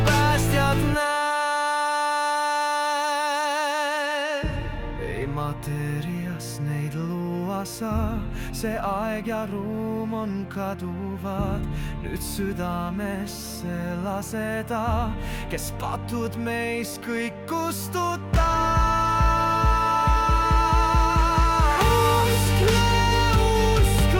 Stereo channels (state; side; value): identical; both; correlation 1.00